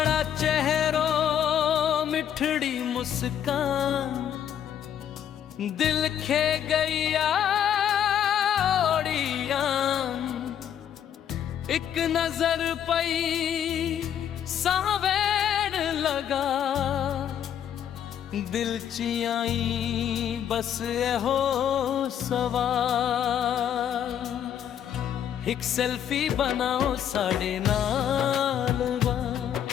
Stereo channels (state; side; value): quieter; right; 9.6 dB